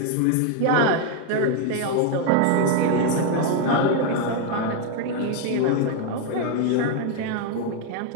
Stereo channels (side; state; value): both; different; correlation 0.01